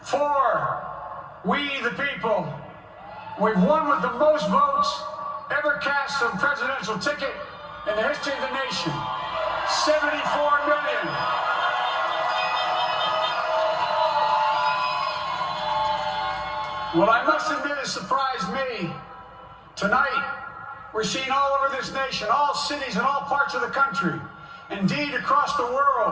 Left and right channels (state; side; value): identical; both; correlation 1.00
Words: for we the people. We've won with the most votes ever cast on a presidential ticket in the history of the nation. 74 million. Well, I must admit it surprised me. Tonight, we're seeing all over this nation, all cities and all parts of the country, indeed across the